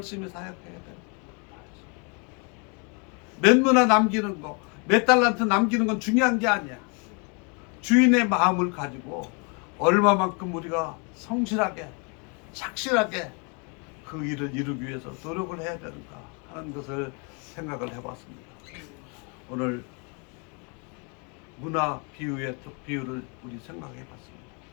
사역해야 돼. 몇 문화 남기는 거, 몇 달란트 남기는 건 중요한 게 아니야. 주인의 마음을 가지고 얼마만큼 우리가 성실하게, 착실하게 그 일을 이루기 위해서 노력을 해야 되는가 하는 것을 생각을 해봤습니다. 오늘 문화 비유의 비유를 우리 생각해봤습니다.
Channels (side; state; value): right; quieter; 35.0 dB